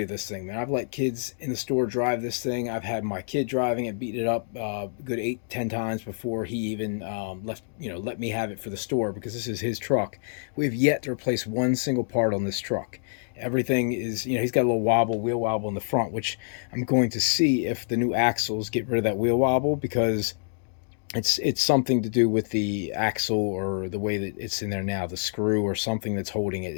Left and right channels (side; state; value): right; silent; digital silence